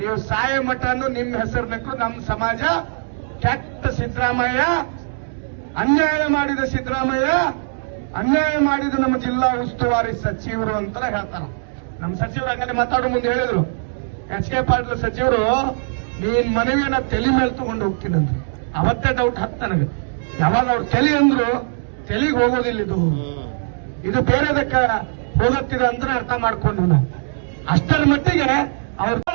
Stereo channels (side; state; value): left; silent; digital silence